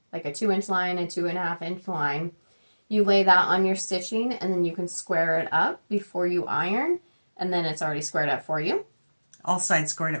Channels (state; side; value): inverted; both; correlation -1.00